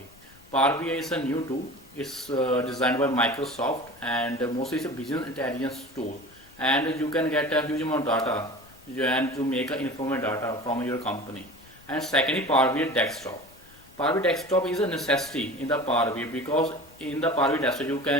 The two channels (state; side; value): noise; left; rumble, 26 dB below the sound